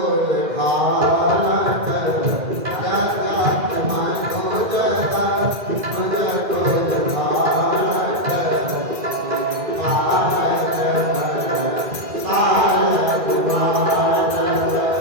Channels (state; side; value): late; left; 2.1 ms